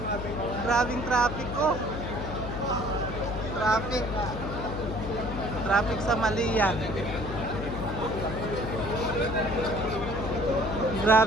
Grabing traffic ko. Traffic sa Malia.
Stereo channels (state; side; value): noise; left; hum, 6 dB below the sound